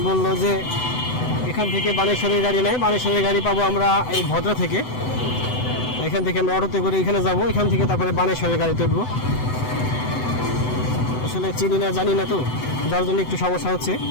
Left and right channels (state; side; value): late; right; 7.9 ms